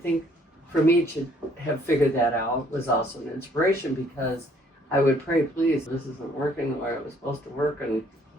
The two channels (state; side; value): normal; both; correlation 0.63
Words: for me to have figured that out was also an inspiration, because I would pray, please, this isn't working the way it was supposed to work. And